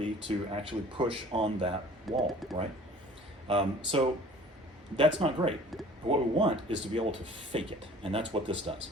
to actually push on that wall, right? So that's not great. What we want is to be able to fake it, and that's what this does.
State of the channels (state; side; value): normal; both; correlation 0.48